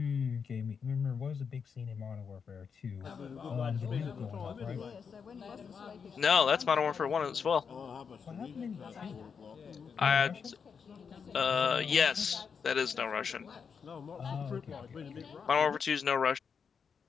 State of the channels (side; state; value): right; quieter; 6.3 dB